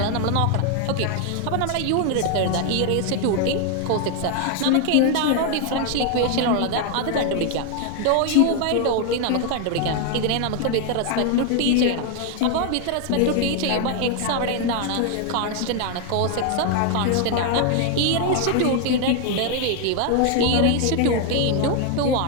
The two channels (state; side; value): different; both; correlation 0.01